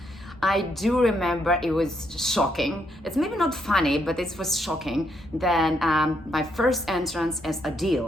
I do remember it was shocking. It's maybe not funny, but it was shocking. Then my first entrance as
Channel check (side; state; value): both; normal; correlation 0.76